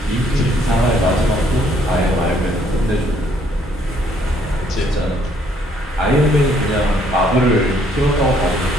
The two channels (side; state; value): both; normal; correlation 0.66